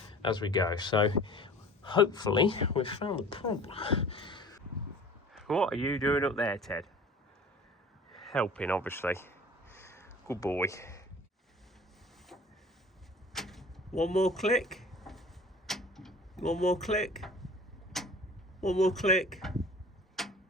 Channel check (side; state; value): both; normal; correlation 0.44